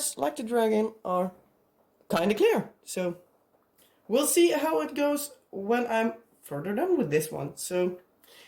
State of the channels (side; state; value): both; identical; correlation 1.00